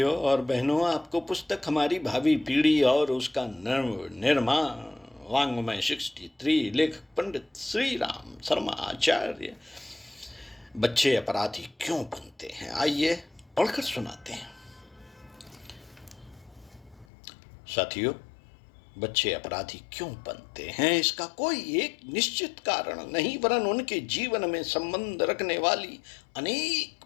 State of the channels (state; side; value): drops out; right; at 17.1 s